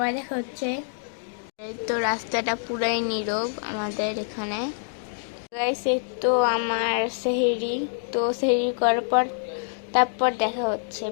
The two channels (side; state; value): right; silent; digital silence